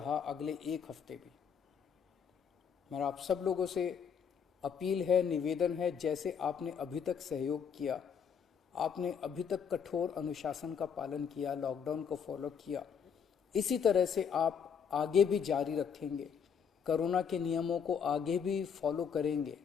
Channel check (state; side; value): quieter; right; 7.1 dB